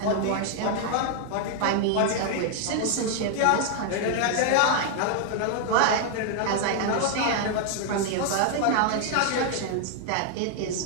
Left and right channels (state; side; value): different; both; correlation 0.00